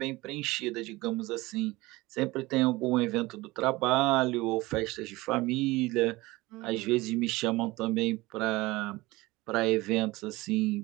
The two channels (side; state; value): left; quieter; 20.8 dB